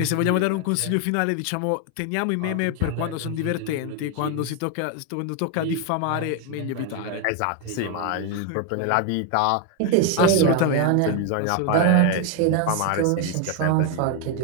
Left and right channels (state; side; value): different; both; correlation 0.01